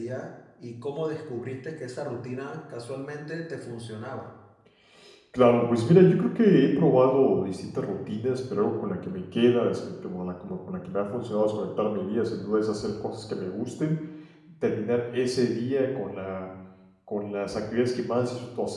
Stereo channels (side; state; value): both; identical; correlation 1.00